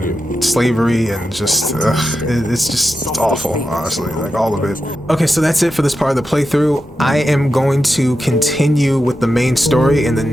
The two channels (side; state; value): both; normal; correlation 0.89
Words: slavery and just it's awful, honestly, like all of it. Okay, so that's it for this part of the playthrough. I am going to continue with the main story in the